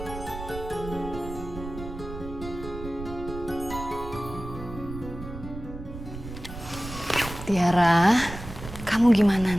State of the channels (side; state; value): right; noise; rumble, 11 dB below the sound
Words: Tiara, kamu gimana